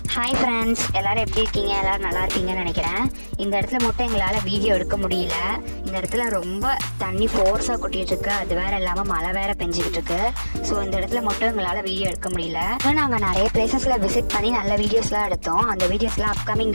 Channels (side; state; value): both; inverted; correlation -1.00